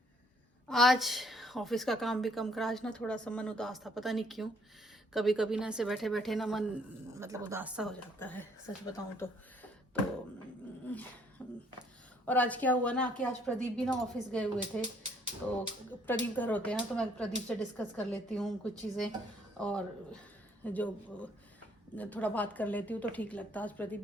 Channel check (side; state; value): both; normal; correlation 0.64